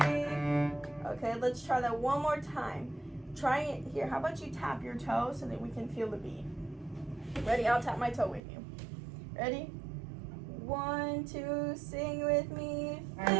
Okay, let's try that one more time. Try it here. How about you tap your toe so that we can feel the beat? Ready? I'll tap my toe with you. Ready? 1, 2, sing with me.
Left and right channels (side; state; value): left; drops out; at 8.4 s